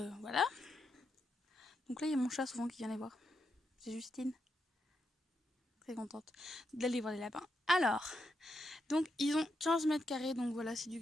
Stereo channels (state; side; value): normal; both; correlation 0.83